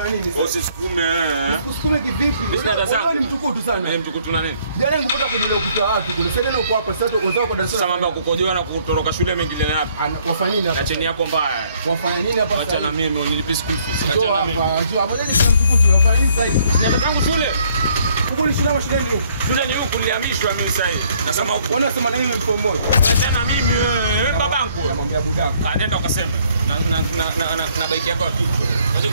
nini? Usisukume. Usisukume kivipi? Wewe ni mtukutu sana. Mimi mtukutu na nini? Jana ningepata kujua kuta watu kule. Sasa ndio uko hapa sasa wenzao kwa darasa. Sasa mambo ya kukojoa na kutoroka shule mengine na hapa. Wafanya nini hapa? Na cheni yako mbaya. Wafanya nini hapa? Acha na mimi unilipe school fees. Acha na mimi. Acha hapo ndio mtukutu. Wafanya nini sasa hivi? Nataka tangu shule. Huko ni shule ama shule ndio? Shule ni huku nilihamishwa mimi sasa hivi. Nasema huko. Wanasema na mimi mtu mmoja. Acha na mimi wewe babangu. Namwambia budaka. Nenda ukasema. Na bike yako kitu. Acha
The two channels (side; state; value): both; inverted; correlation -0.64